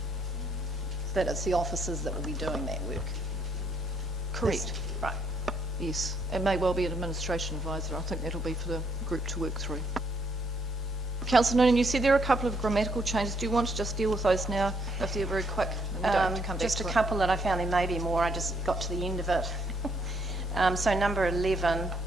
That it's the officers that will be doing that work. Correct. Right. Yes. It may well be an administration advisor. I think that'll be for the group to work through. Councillor Noonan, you said there are a couple of grammatical changes. Do you want to just deal with those now, if they're very quick, and we don't have to come back Just to a it. couple that I found, there may be more, I just got to the end of it. So number 11,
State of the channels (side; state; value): both; normal; correlation 0.71